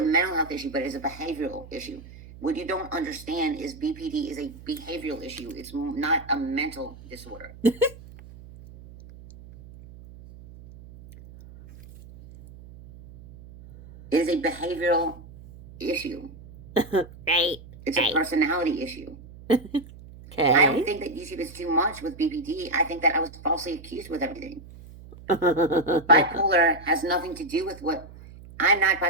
mental health issue, but it's a behavioral issue. What you don't understand is BPD is a behavioral issue. It's not a mental disorder. It is a behavioral issue. Right. It's a personality issue. Okay. I don't think that YouTube is too much with BPD. I think that I was falsely accused with everything. Bipolar has nothing to do with what... I'm not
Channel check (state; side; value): noise; right; hum, 18 dB below the sound